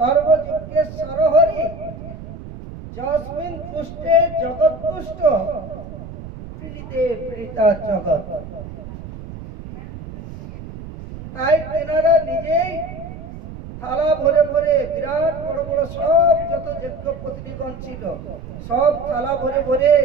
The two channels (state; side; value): noise; right; rumble, 12 dB below the sound